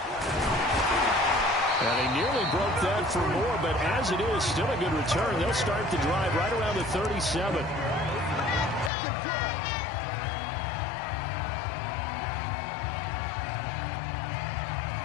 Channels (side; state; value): right; drops out; at 8.9 s